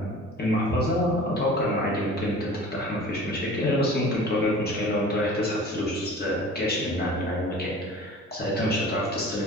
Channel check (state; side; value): normal; both; correlation 0.42